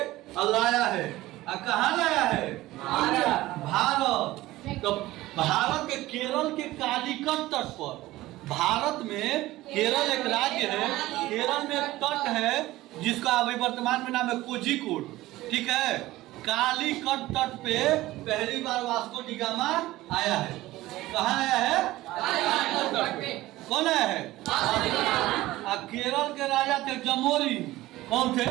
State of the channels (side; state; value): left; quieter; 17.2 dB